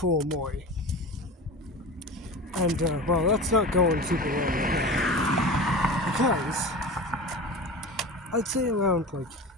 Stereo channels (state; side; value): normal; both; correlation 0.32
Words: Omori. And, that's not going super well right now. Because, I'd say around,